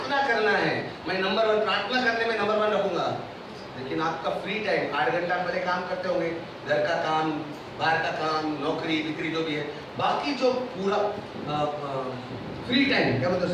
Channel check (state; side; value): identical; both; correlation 1.00